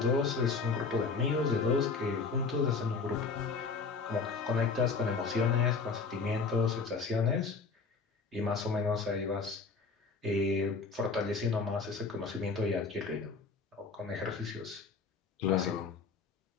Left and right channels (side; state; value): right; quieter; 4.6 dB